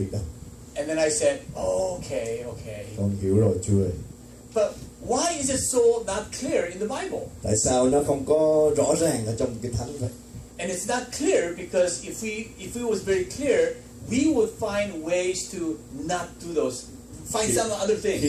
đâu. And then I said, okay. Con hiểu rồi Chúa ơi. But why is it so not clear in the Bible? Tại sao nó không có rõ ràng ở trong Kinh Thánh vậy? And it's not clear because if it was very clear, we would find ways to not do those, find some other things.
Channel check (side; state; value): both; identical; correlation 1.00